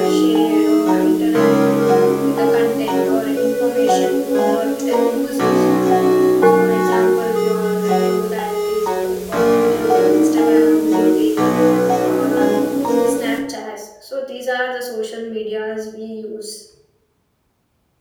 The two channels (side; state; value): both; identical; correlation 1.00